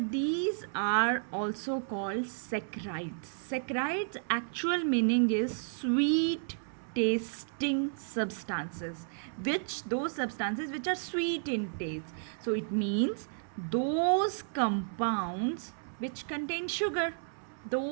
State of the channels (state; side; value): silent; left; 56 dB below the other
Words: these are also called saccharides. Saccharides actual meaning is sweet tasting substances, which those substances which are sweet in taste. So it means those compounds which contain sugar.